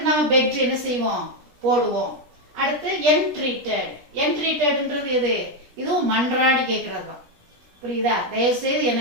நம்ம பெக்டு என்ன செய்வோம், போடுவோம். அடுத்து என்ட்ரீட்டட். என்ட்ரீட்டட்ன்றது எது, இதுவும் மன்றாடி கேட்கறது தான். புரியுதா? தயவு செய்து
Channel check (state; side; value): late; left; 17 ms